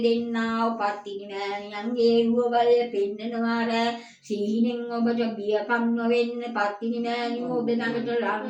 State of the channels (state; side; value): identical; both; correlation 1.00